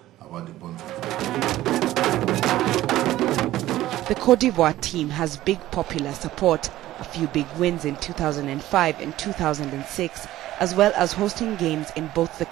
The Côte d'Ivoire team has big popular support, a few big wins in 2005 and 2006, as well as hosting games in both the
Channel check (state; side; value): quieter; left; 15.0 dB